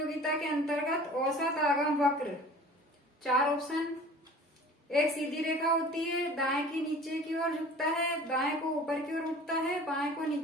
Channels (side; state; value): both; normal; correlation 0.44